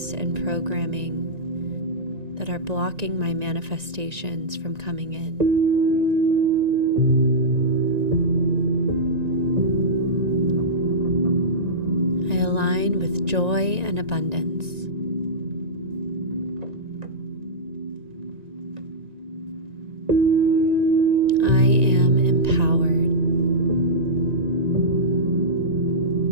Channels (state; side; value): late; left; 1.9 ms